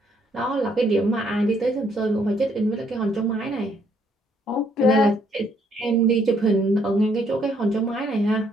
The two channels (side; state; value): both; normal; correlation 0.69